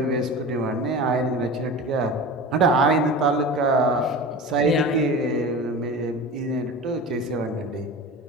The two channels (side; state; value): both; normal; correlation 0.32